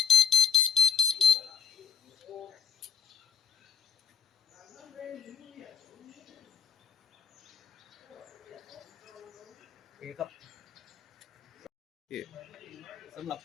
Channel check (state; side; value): quieter; right; 7.5 dB